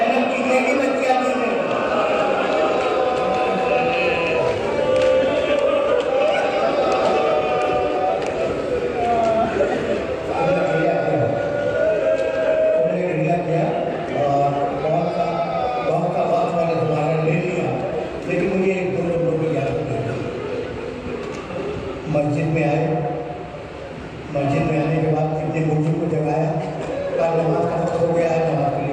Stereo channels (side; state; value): both; identical; correlation 1.00